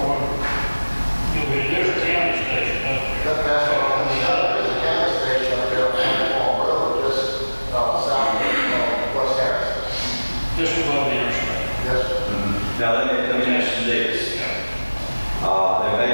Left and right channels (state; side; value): inverted; both; correlation -1.00